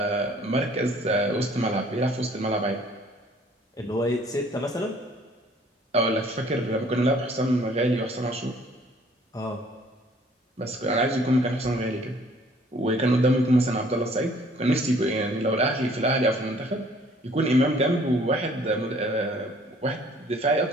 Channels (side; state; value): both; normal; correlation 0.57